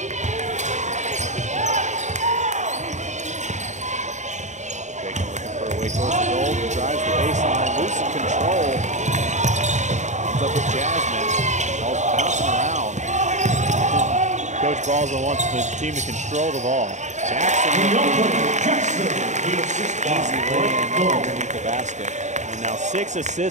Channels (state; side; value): late; left; 0.34 ms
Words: Bacon looking for a way towards the goal. Drives the baseline. Losing control. Ends up with Jasmine. Ball's bouncing around. Coach Balza wants the team to control the ball. Jackson easy lay-in underneath the basket. And now 6